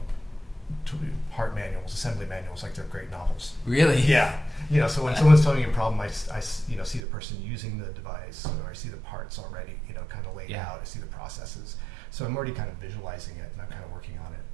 part manuals, assembly manuals, like they're great novels. Really? Yeah. So when someone's telling me a problem, I see the person using the device, or I see the parts already, kind of laid out. I see the processes. So I'm already kind of visualizing it, and I'm kind of working on it.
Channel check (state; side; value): drops out; left; at 7.0 s